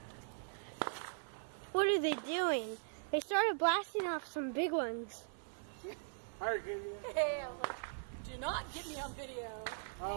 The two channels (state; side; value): silent; left; 51 dB below the other